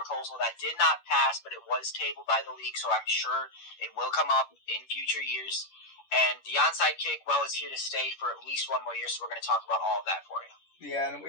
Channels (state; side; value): late; right; 10 ms